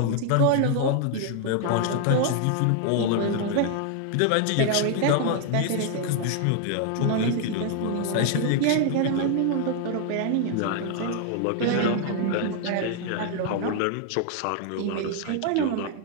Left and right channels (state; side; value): different; both; correlation 0.00